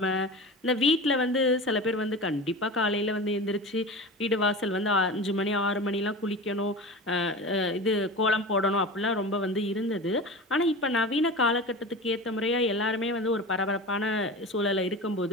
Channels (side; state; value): both; normal; correlation 0.30